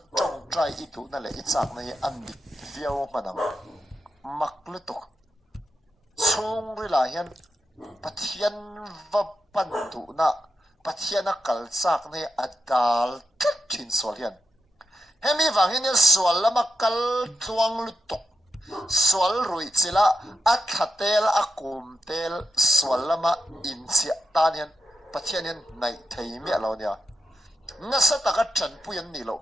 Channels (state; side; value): normal; both; correlation 0.86